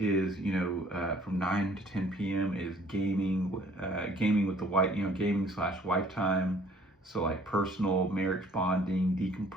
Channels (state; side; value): normal; both; correlation 0.57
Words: from 9 to 10 p.m. is gaming with the wife, gaming / wife time. So like personal, marriage bonding,